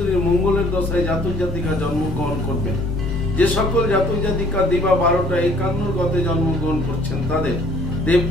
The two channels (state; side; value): normal; both; correlation 0.57